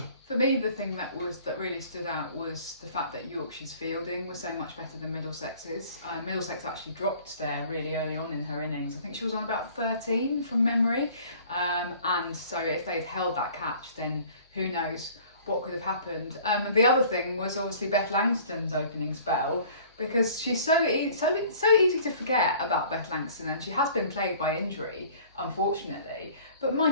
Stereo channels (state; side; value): inverted; both; correlation -0.50